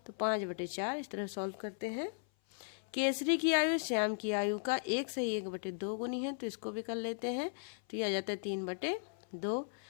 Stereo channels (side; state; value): right; silent; 53 dB below the other